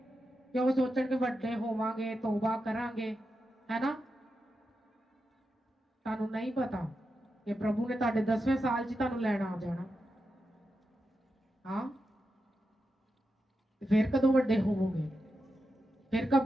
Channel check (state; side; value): normal; both; correlation 0.88